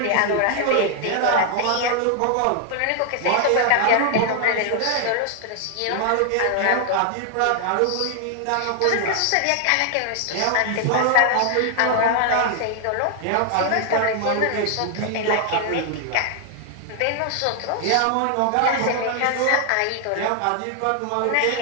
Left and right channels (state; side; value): different; both; correlation 0.00